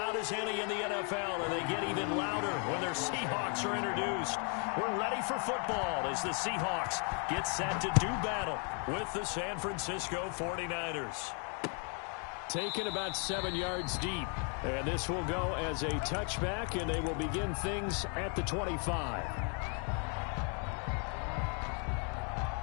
as any in the NFL, and they get even louder when their Seahawks are introduced. We're ready for football as the Seahawks get set to do battle with the San Francisco 49ers. Taken about 7 yards deep. And this will go as a touchback, and they will begin things at the 25.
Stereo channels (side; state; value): right; quieter; 39.5 dB